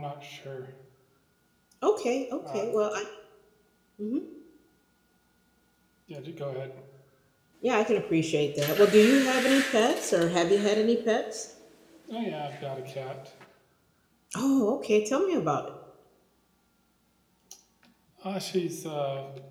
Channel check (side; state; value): both; identical; correlation 1.00